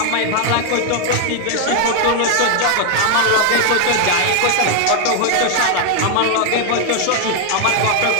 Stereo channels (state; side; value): different; both; correlation 0.00